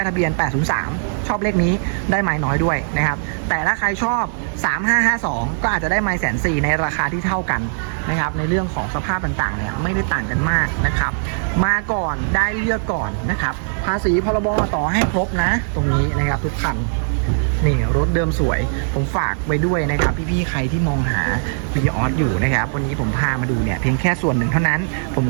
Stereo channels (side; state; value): left; silent; digital silence